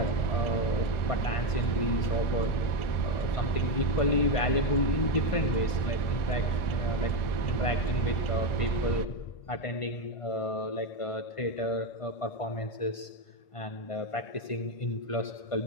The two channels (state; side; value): late; right; 1.5 ms